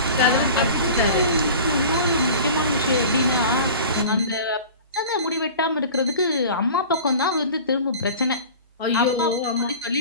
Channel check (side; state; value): both; inverted; correlation -0.38